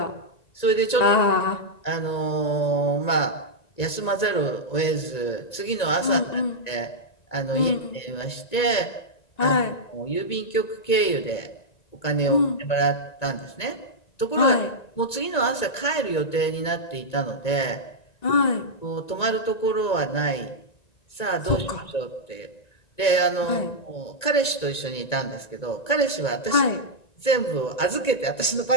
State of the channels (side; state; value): right; late; 1.9 ms